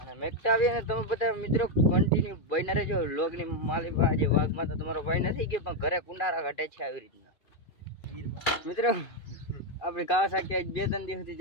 મેકતા આવીએ ને તમે બધા મિત્રો કન્ટિન્યુ બન્યા રહેજો. લોગની માલી આજે વાઘમાં તો તમારો ભાઈ નથી ગયો પણ ઘરે કુંડારા ઘટે છે આવી રીતના. મિત્રો આપણે કાવાસાકી આજ 2-3 દિવસ સુધી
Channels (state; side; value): late; right; 2.5 ms